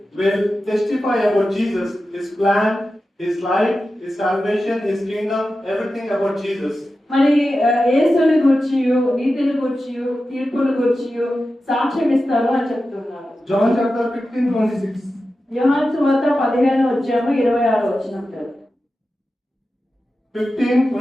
will testify about Jesus, his plan, his life, his salvation, his kingdom, everything about Jesus. మరి యేసుని గురించి నీతిని గురించి తీర్పుని గురించి సాక్ష్యం ఇస్తారు అని చెప్తున్నారు. John chapter 15:26. యోహాను సువార్త 15వ అధ్యాయము 26వ వచనం.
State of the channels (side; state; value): both; normal; correlation 0.92